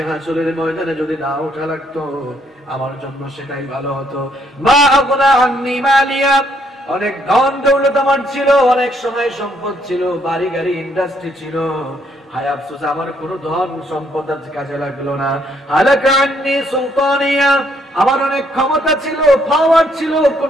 হাসরের ময়দানে যদি না ওঠা লাগতো, আমার জন্য সেটাই ভালো হতো। মা আগনা আন্নি মালিয়া, অনেক ধন দৌলত আমার ছিল, অনেক সময় সম্পদ ছিল, বাড়ি গাড়ি ইন্ডাস্ট্রি ছিল, হায় আফসোস আমার কোনো ধন সম্পদ কাজে লাগলো না। হালাকা আন্নি সুলতানিয়া, আমার অনেক ক্ষমতা ছিল, পাওয়ার ছিল,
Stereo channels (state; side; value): normal; both; correlation 0.70